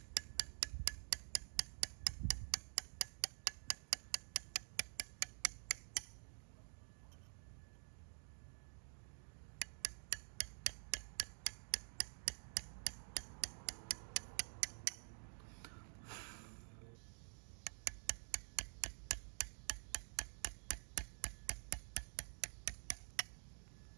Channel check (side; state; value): left; silent; digital silence